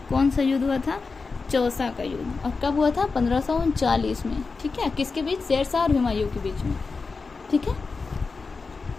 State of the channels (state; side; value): quieter; right; 4.4 dB